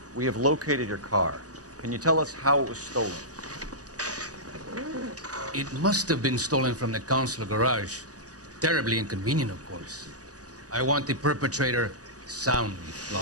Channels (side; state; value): left; late; 0.67 ms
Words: we have located your car. Can you tell us how it was stolen? It must have been stolen from the consular garage. Terribly inconvenient, of course. I want the perpetrator soundly